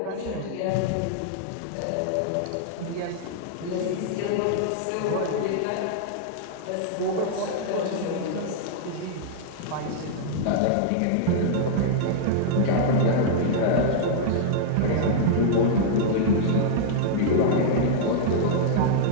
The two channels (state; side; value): different; both; correlation -0.02